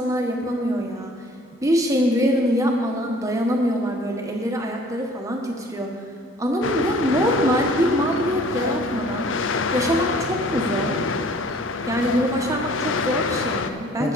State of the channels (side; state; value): both; normal; correlation 0.53